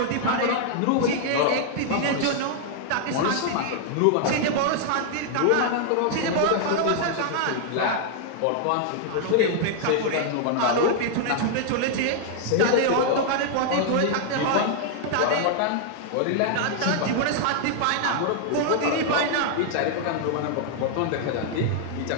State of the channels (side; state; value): both; different; correlation 0.00